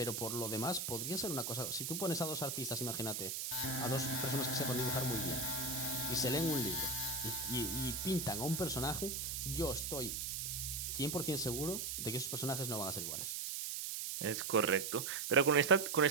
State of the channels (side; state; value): right; noise; hiss, 3 dB below the sound